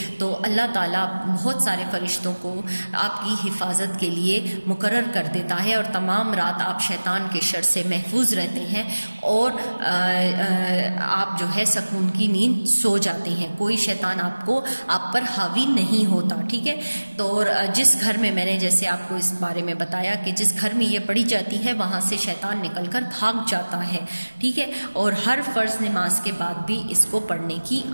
تو اللہ تعالیٰ بہت سارے فرشتوں کو آپ کی حفاظت کے لیے مقرر کر دیتا ہے اور تمام رات آپ شیطان کے شر سے محفوظ رہتے ہیں اور آپ جو ہے سکون کی نیند سو جاتے ہیں، کوئی شیطان آپ پر حاوی نہیں ہوتا، ٹھیک ہے۔ تو جس گھر میں نے جیسے آپ کو اس بارے میں بتایا کہ جس گھر میں یہ پڑھی جاتی ہے وہاں سے شیطان نکل کر بھاگ جاتا ہے، ٹھیک ہے، اور ہر فرض نماز کے بعد بھی اس کو پڑھنے کی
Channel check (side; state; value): both; inverted; correlation -1.00